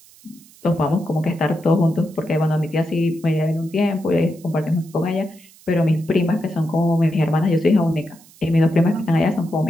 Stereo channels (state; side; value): noise; right; hiss, 25 dB below the sound